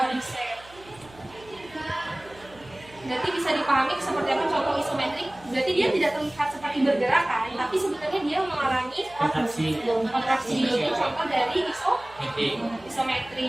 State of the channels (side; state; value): right; noise; hum, 23 dB below the sound